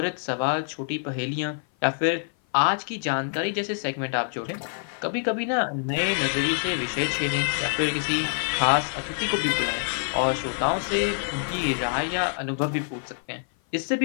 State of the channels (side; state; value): right; silent; 55 dB below the other